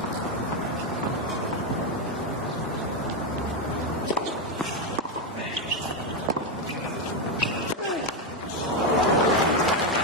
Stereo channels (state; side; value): normal; both; correlation 0.06